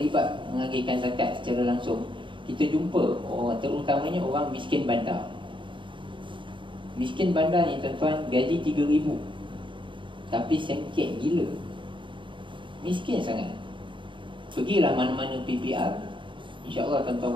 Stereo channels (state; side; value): late; left; 0.24 ms